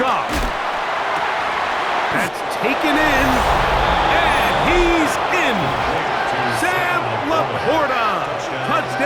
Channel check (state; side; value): identical; both; correlation 1.00